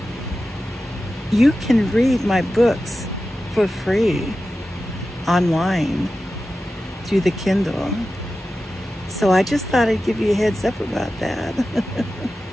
you can read my books for free online through the Kindle. So I just thought I'd give you a heads up about that.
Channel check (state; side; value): normal; both; correlation 0.93